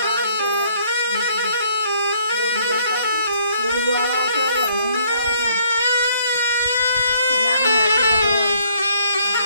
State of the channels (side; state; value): both; inverted; correlation -0.64